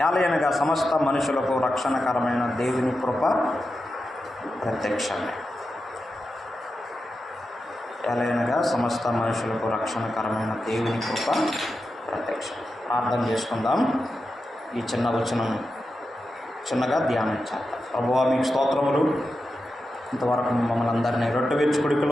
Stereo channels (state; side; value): normal; both; correlation 0.90